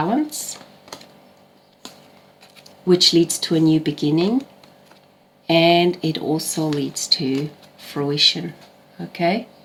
which leads to a new beginning. And it also leads to fruition, okay?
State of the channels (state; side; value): identical; both; correlation 1.00